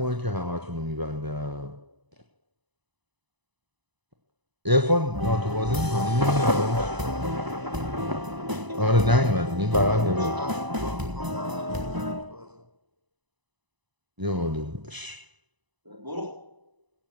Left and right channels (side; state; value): left; late; 1.0 ms